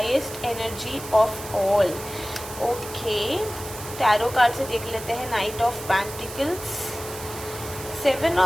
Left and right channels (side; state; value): right; noise; hiss, 12 dB below the sound